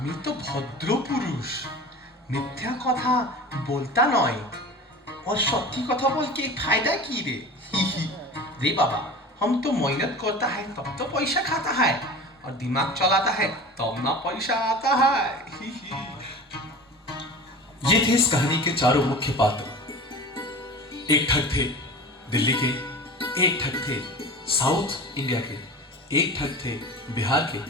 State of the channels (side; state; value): both; normal; correlation 0.35